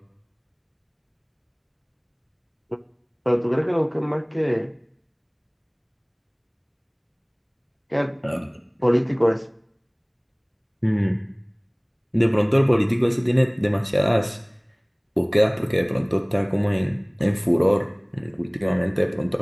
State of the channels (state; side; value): identical; both; correlation 1.00